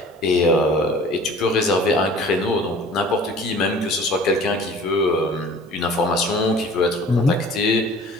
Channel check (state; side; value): normal; both; correlation 0.47